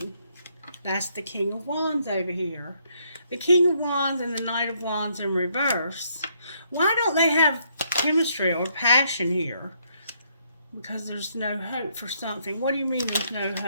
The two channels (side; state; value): both; inverted; correlation -0.72